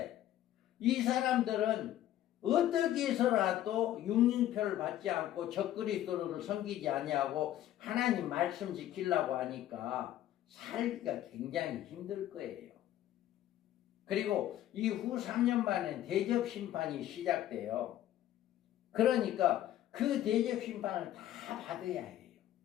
이 사람들은 어떻게 해서라도 육링표를 받지 않고 적그리스도를 섬기지 아니하고 하나님 말씀 지키려고 하니까 살기가 굉장히 힘들 거예요. 그리고 이후 3년 만에 대접 심판이 시작돼요. 그러니까 그 대접 심판을 다 받아야 해요.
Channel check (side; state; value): right; quieter; 12.7 dB